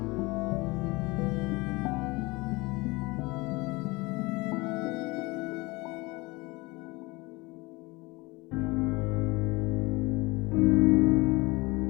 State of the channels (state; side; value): quieter; right; 23.6 dB